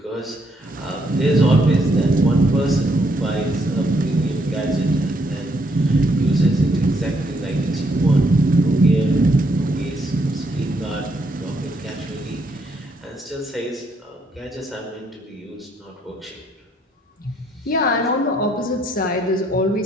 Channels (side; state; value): both; normal; correlation 0.72